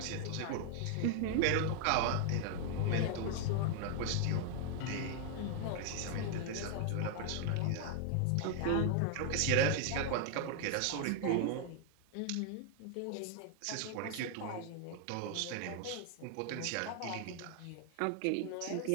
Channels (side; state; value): both; different; correlation 0.00